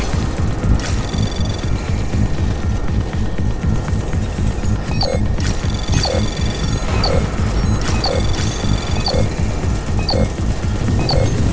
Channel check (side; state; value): both; identical; correlation 1.00